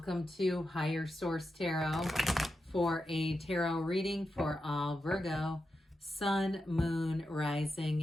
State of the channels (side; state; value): both; normal; correlation 0.88